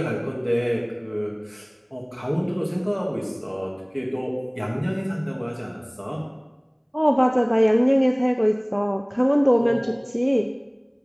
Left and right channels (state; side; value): identical; both; correlation 1.00